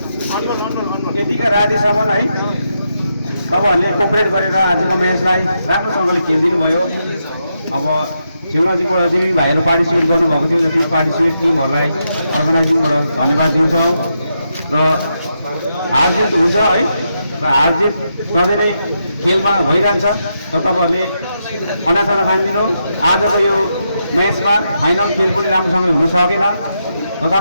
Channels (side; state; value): both; inverted; correlation -0.83